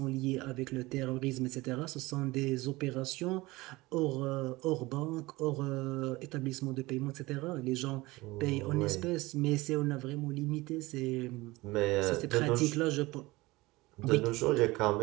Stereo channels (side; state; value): left; quieter; 20.9 dB